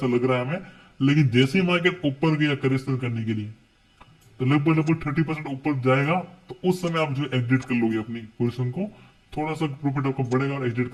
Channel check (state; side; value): identical; both; correlation 1.00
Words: लग रहा है हमें। लेकिन जैसे ही मार्केट ऊपर गया करेक्शन करने के लिए, तो लगभग लगभग 30% ऊपर जाएगा, तो उस समय आप जो एग्जिट कर लोगे अपनी पोजिशन को, थोड़ा सा प्रॉफिट आपका बढ़ेगा और एग्जिट